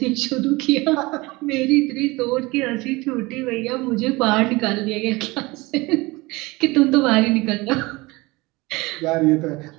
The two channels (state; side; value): quieter; left; 22.8 dB